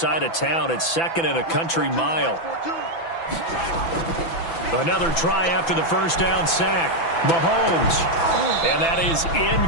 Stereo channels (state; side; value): late; right; 6.0 ms